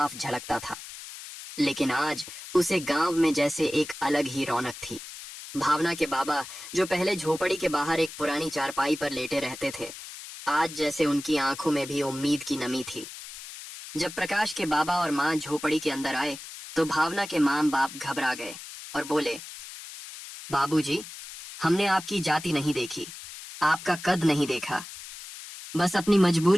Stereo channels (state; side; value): noise; left; hiss, 13 dB below the sound